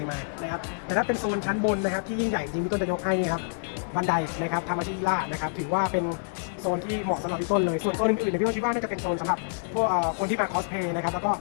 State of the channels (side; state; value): right; silent; digital silence